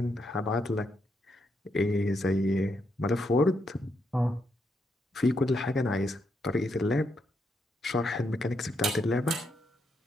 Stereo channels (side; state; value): both; normal; correlation 0.79